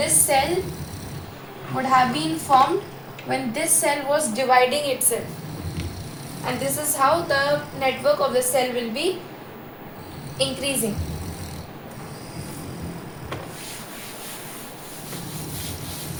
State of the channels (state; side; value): identical; both; correlation 1.00